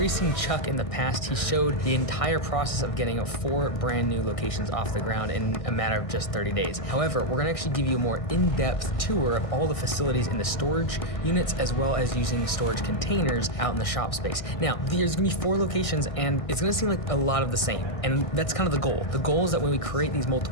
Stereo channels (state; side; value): late; right; 1.6 ms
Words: seen Chuck in the past. He showed the entire process of getting 4 brand new locations off the ground in a matter of just 30 days. However, we're gonna actually give you a more in-depth tour of all the facilities in the storage units, as well as using storage containers out in the shop space. Now, there's gonna be 4 locations, and it's gonna seem like a lot of the same. And that's kind of the goal. The goal is that when we create these